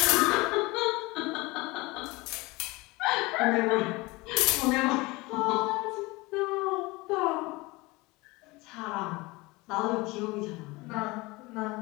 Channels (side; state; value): right; quieter; 23.1 dB